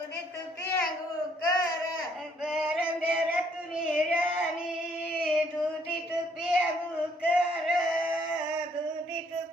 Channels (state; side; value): normal; both; correlation 0.67